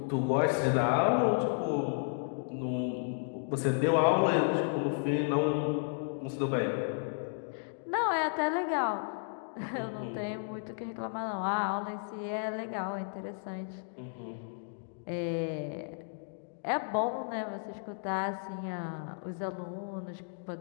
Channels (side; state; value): right; silent; digital silence